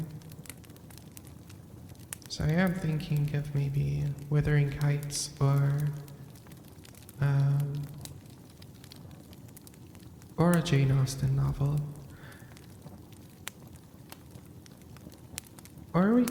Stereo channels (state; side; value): identical; both; correlation 1.00